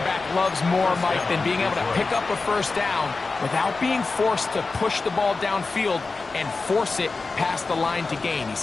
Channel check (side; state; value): right; quieter; 3.9 dB